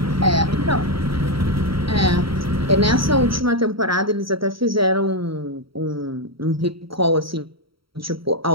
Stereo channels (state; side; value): late; left; 0.75 ms